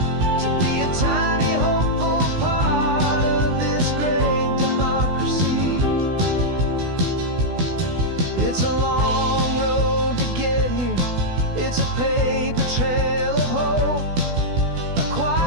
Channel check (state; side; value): late; left; 16 ms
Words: to be a tiny hopeful part of this great democracy. It's a long road to get here, it's a paper trail of hope, a